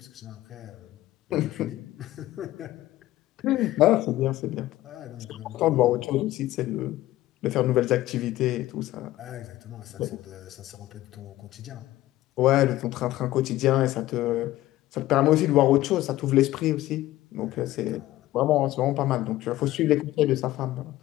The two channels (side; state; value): right; quieter; 15.8 dB